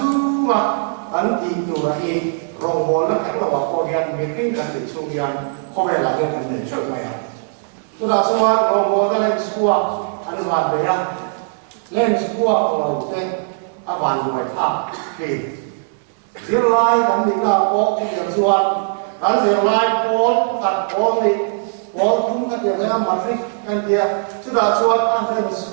ma kan ti tu ra rong mol na kan wa ko yan meeting kan ti chung yan, ko ve la kan ne chok ma ya. So da suwa rong mol ka le suwa an wa be ya. Lên sebuah pulau teh awan dua tak, zilai dan tinggal pok yang suat, dan zilai pol kat pol ni pol pun kat dia matrik kan dia sudah suat ada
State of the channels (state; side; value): silent; left; 66 dB below the other